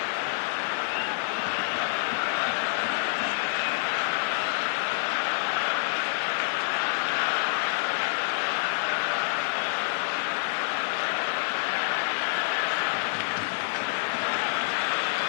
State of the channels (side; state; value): right; silent; digital silence